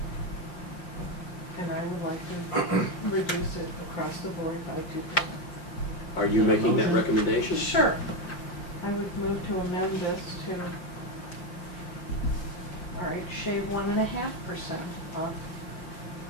And I would like to reduce it across the board by 2%. Are you making that recommendation? Sure. I would move to amend this to, all right, shave 1.5% off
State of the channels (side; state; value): right; late; 5.7 ms